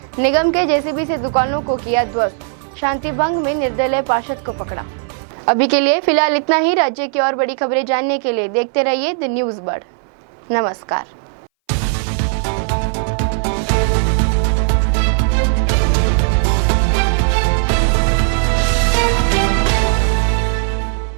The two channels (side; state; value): left; silent; 61 dB below the other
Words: निगम के जेसीबी से दुकानों को किया ध्वस्त, शांति भंग में निर्दलीय पार्षद को पकड़ा। अभी के लिए फिलहाल इतना ही। राज्य की और बड़ी खबरें जानने के लिए देखते रहिए द न्यूज़ बर्ड। नमस्कार।